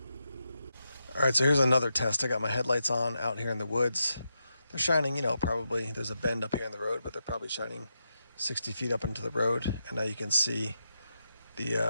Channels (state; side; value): inverted; both; correlation -0.85